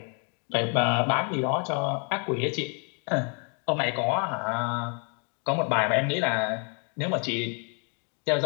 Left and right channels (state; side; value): quieter; right; 38.4 dB